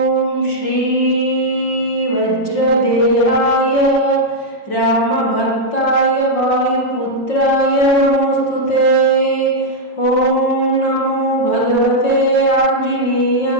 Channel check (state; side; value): late; right; 5.6 ms